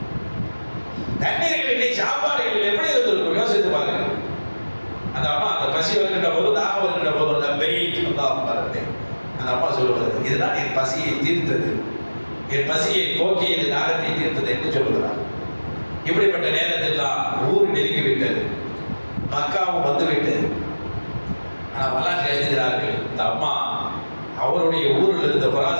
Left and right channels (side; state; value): both; inverted; correlation -1.00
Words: தண்ணீர்கள் இல்லை, சாப்பாடுகள் எப்படி இருந்திருக்கும் யோசித்து பாருங்க. அந்த அம்மா அந்த பசி வருகின்ற போது, தாகம் வருகின்ற போது அந்த அம்மா சொல்லுவது, இதுதான் என் பசியை தீர்த்தது, என் பசியை போக்கியது, தாகத்தை தீர்த்தது என்று சொல்லுகிறார். இப்படிப்பட்ட நேரத்தில் தான் ஊர் நெருங்கிவிட்டது, மக்காவும் வந்துவிட்டது. ஆனால் வரலாற்று எழுதுகிறார்கள், இந்த அம்மா அவருடைய ஊரில் இருந்த